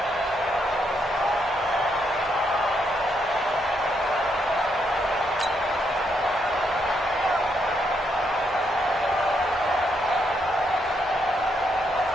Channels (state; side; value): normal; both; correlation 0.77